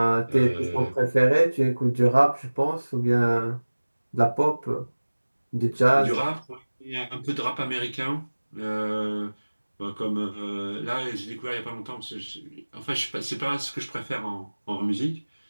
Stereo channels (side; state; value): both; inverted; correlation -1.00